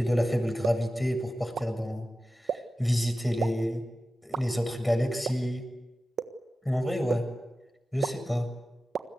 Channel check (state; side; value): normal; both; correlation 0.94